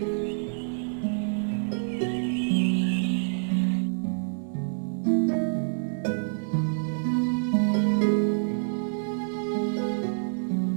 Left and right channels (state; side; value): silent; left; 55 dB below the other